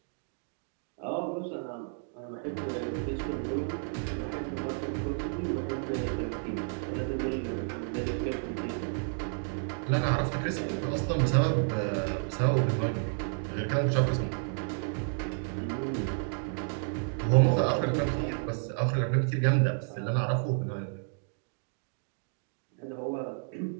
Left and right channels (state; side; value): silent; left; 55 dB below the other